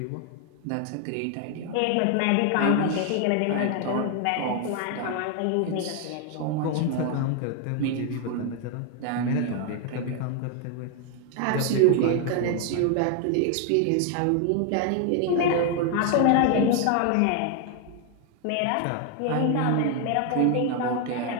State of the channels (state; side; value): different; both; correlation 0.01